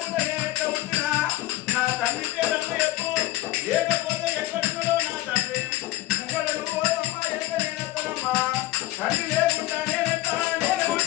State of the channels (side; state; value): right; quieter; 16.4 dB